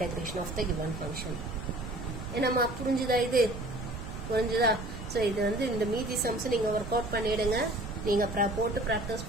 of the given function. என்னம்மா புரிஞ்சுதா இது? புரிஞ்சுதா? ஸோ இது வந்து இந்த மீதி சம்ஸ் நீங்கள் ஒர்க் அவுட் பண்ணிடுங்க. நீங்கள் போட்டு ப்ராக்டிஸ்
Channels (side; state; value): right; noise; rumble, 9 dB below the sound